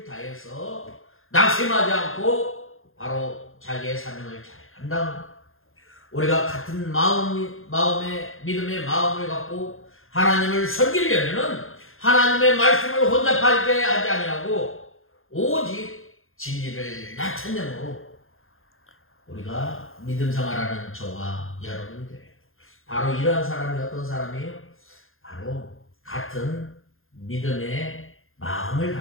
다해서 낙심하지 않고 바로 자기의 사명을 잘 감당합니다. 우리가 같은 마음의 믿음의 마음을 갖고 하나님을 섬기려면은 하나님의 말씀을 혼잡하게 하지 아니하고 오직 진리를 나타내므로 우리가 믿음 생활하는 저와 여러분들 바로 이러한 사람이 어떤 사람이에요? 바로 같은 믿음의 마음을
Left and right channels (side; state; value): right; late; 0.60 ms